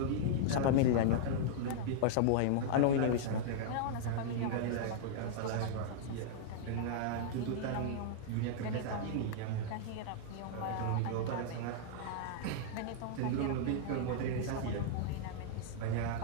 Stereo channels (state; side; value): different; both; correlation -0.01